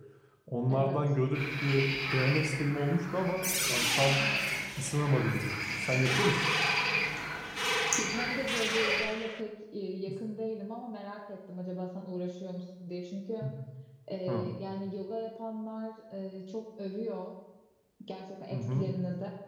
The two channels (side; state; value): both; identical; correlation 1.00